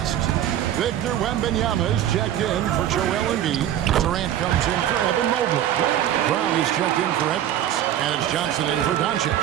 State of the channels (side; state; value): left; quieter; 11.4 dB